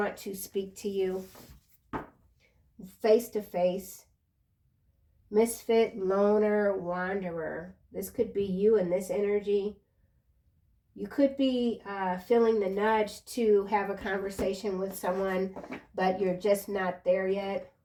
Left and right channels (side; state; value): both; identical; correlation 1.00